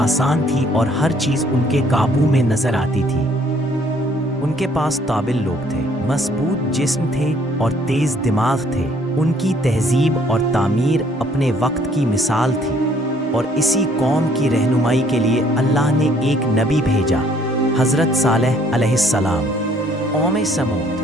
تھی اور ہر چیز ان کے قابو میں نظر آتی تھی۔ ان کے پاس قابل لوگ تھے، مضبوط جسم تھے اور تیز دماغ تھے۔ ان کی تہذیب اور تعمیر اپنے وقت کی مثال تھی، اور اسی قوم کی رہنمائی کے لیے اللہ نے ایک نبی بھیجا، حضرت صالح علیہ السلام۔ قوم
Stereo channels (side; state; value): both; normal; correlation 0.62